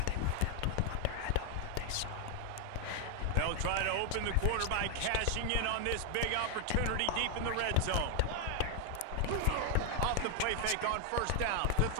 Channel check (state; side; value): different; both; correlation 0.00